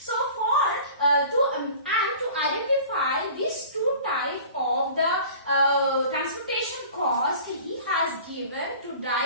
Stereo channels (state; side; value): inverted; both; correlation -0.43